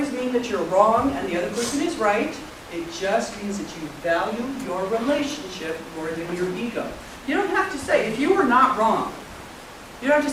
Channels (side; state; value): both; identical; correlation 1.00